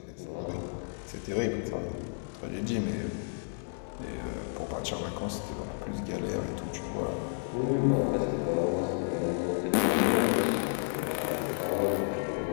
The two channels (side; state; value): right; silent; 57 dB below the other